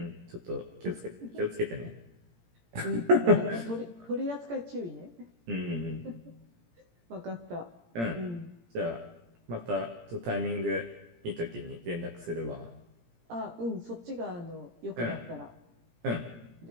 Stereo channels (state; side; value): late; left; 17 ms